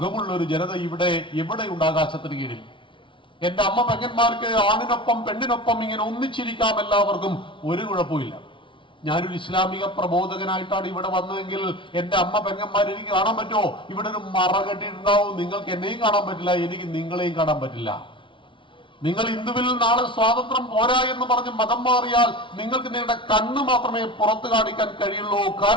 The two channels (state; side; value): late; right; 0.25 ms